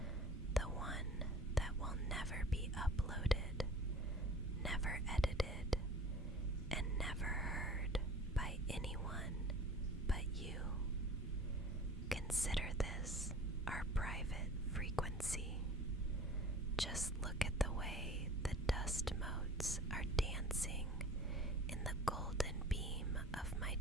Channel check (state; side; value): normal; both; correlation 0.44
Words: the one that will never be uploaded, never edited, and never heard by anyone but you. Consider this our private frequency. Just look at the way the dust motes are dancing in the golden beam of my